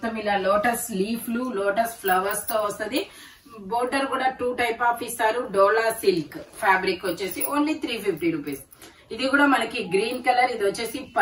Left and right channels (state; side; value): identical; both; correlation 1.00